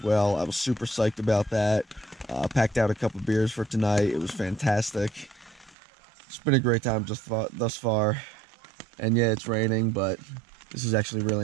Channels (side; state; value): left; drops out; at 5.8 s